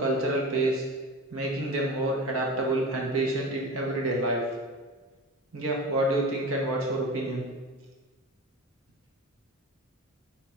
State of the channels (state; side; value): normal; both; correlation 0.31